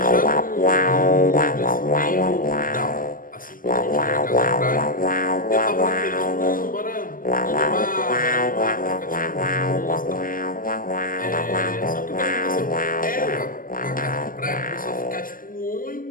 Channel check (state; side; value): late; right; 0.40 ms